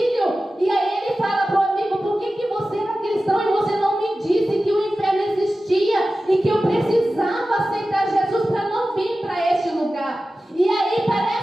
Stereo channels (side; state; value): both; normal; correlation 0.95